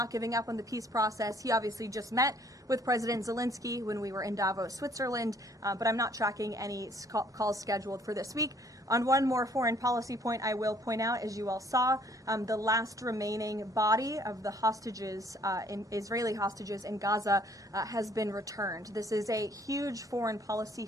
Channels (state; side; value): normal; both; correlation 0.61